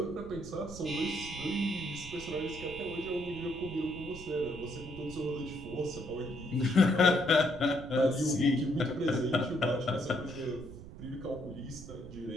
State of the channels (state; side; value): noise; right; rumble, 14 dB below the sound